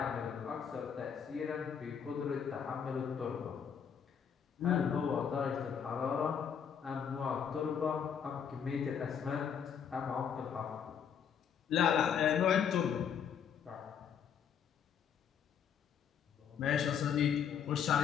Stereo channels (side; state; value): right; quieter; 7.6 dB